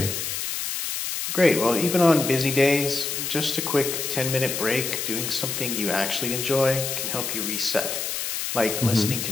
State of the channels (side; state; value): left; noise; hiss, 3 dB below the sound